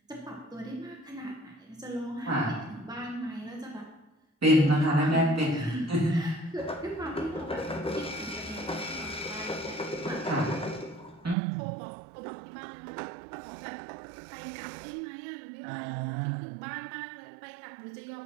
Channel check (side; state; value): left; drops out; at 11.4 s